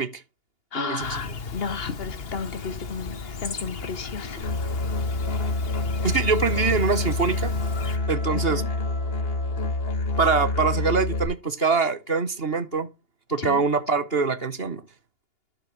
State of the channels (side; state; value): right; late; 2.8 ms